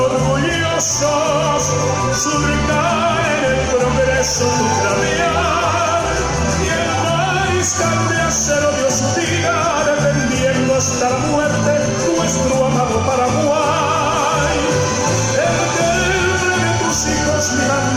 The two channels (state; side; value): identical; both; correlation 1.00